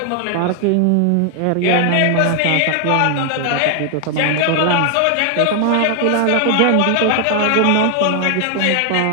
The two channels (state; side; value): different; both; correlation 0.00